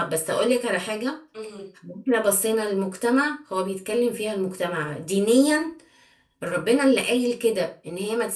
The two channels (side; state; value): both; identical; correlation 1.00